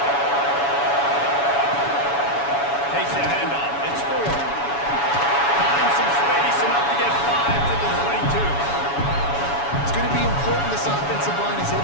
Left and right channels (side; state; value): right; late; 7.1 ms